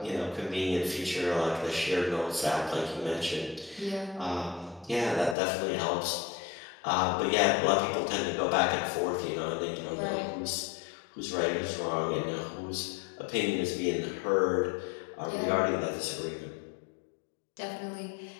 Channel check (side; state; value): right; drops out; at 5.4 s